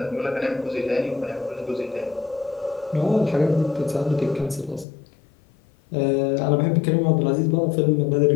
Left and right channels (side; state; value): right; drops out; at 4.9 s